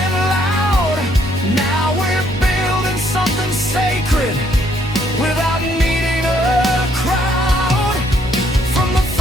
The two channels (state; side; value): normal; both; correlation 0.68